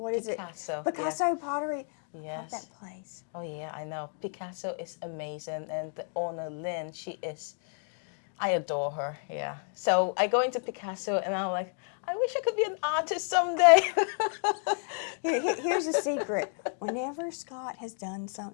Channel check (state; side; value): silent; right; 57 dB below the other